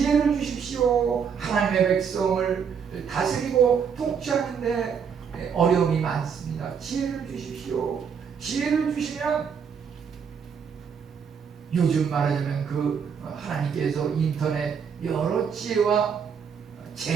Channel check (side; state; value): left; quieter; 6.8 dB